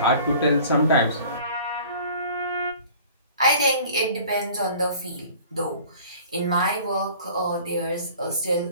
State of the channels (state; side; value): inverted; both; correlation -0.47